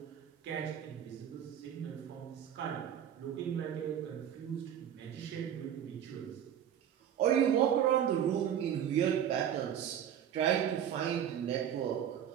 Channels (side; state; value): left; quieter; 9.6 dB